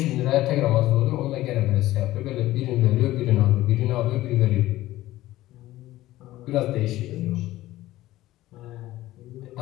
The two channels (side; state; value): right; quieter; 16.0 dB